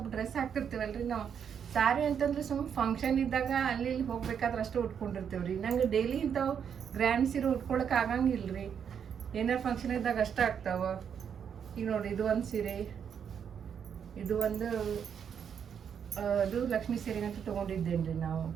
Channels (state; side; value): quieter; left; 7.7 dB